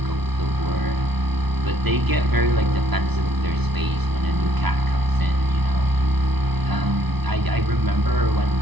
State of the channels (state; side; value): late; left; 0.99 ms